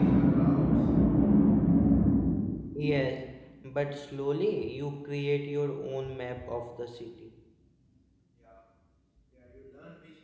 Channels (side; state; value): both; identical; correlation 1.00